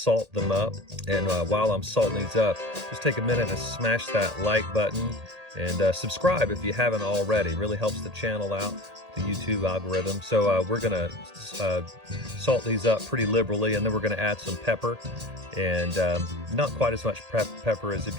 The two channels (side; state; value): left; late; 1.8 ms